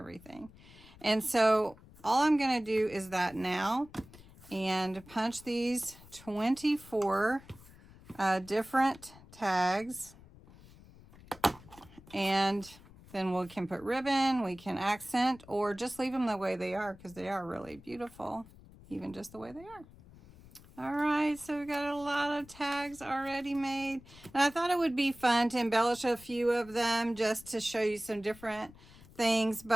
And so all I'm going to do is that now and punch these 24 different tags. And then we can put ribbon, we can accent, or just leave them the way they are because they are really beautiful, even just the way they are. All right, so we got a lot of tags already made. And I thought it would be fun to embellish a few of them just to show you some different things.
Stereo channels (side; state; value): left; noise; rumble, 22 dB below the sound